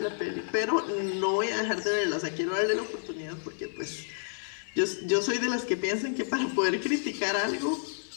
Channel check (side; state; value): right; silent; digital silence